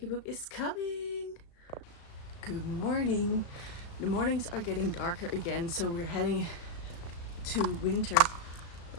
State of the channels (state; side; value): late; right; 35 ms